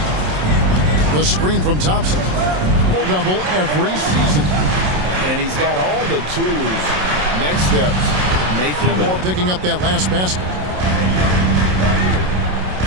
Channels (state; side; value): late; left; 27 ms